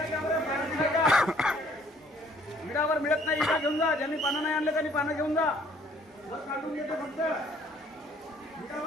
विडावर मिळत नाही विडा घेऊन जा. ज्यांनी पानं नाही आणले त्यांनी पानं घेऊन जा. वर काढून देते फक्त.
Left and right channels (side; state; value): both; normal; correlation 0.60